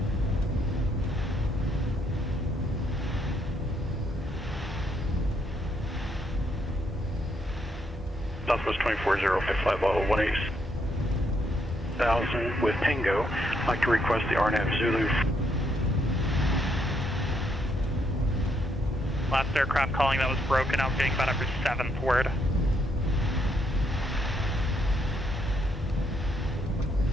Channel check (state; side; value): normal; both; correlation 0.74